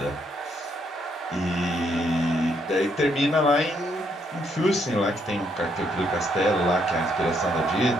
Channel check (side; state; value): both; normal; correlation 0.73